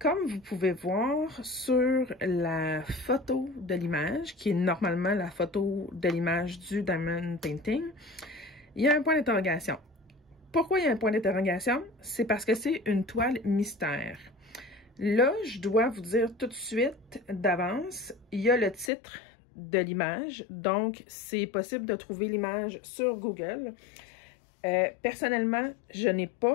vous pouvez voir sur la photo de l'image, qui est normalement la photo de l'image du Diamond Painting, il y a un point d'interrogation. Pourquoi il y a un point d'interrogation? C'est parce que c'est une toile mystère. Là, je dois vous dire tout de suite d'avance, il y a le titre de l'image, donc c'est possible de trouver l'image sur Google. Personnellement, je n'ai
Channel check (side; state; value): right; drops out; at 18.9 s